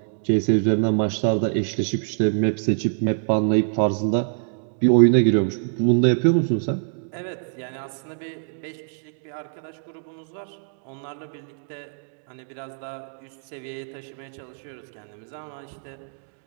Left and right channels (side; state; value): left; silent; digital silence